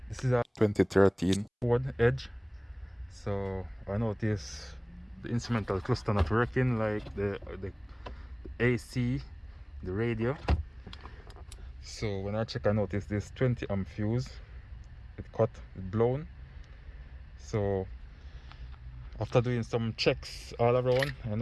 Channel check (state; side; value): identical; both; correlation 1.00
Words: this is a 2013 Ford Edge. So I noticed the instrumental cluster not working, like the AC, the radio. So when I check, I noticed this 20 amp fuse, it blown. So after doing some checks all around,